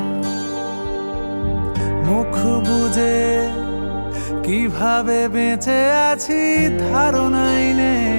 মুখ বুজে কিভাবে বেঁচে আছি ধারণাই নেই।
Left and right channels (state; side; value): inverted; both; correlation -1.00